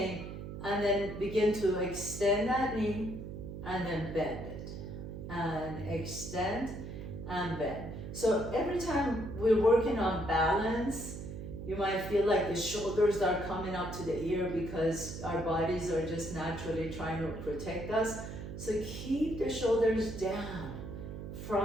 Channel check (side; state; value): right; noise; hum, 8 dB below the sound